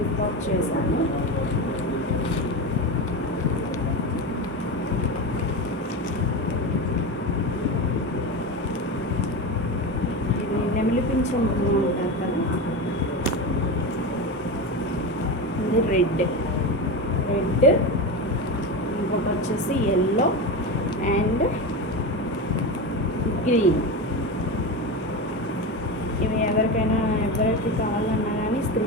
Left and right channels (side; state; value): both; normal; correlation 0.21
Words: చేశాను. ఇది నెమిలి పింఛం అంటారు కదా, రెడ్. ఇంకొకటి వచ్చేసి ఎల్లో అండ్ గ్రీన్. ఇవి ఎవరికి కావాలన్నా కానీ